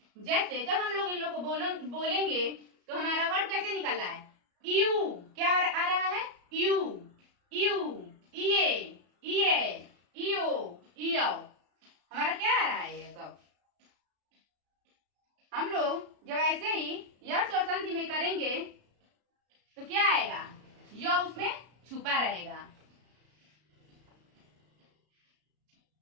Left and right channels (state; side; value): late; left; 33 ms